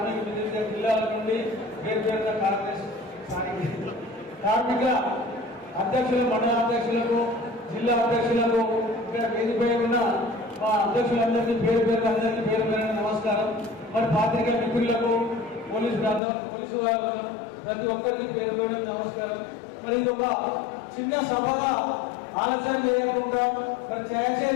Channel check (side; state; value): right; drops out; at 16.2 s